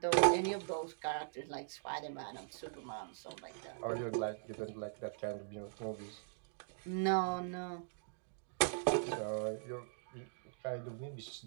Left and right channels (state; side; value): silent; left; digital silence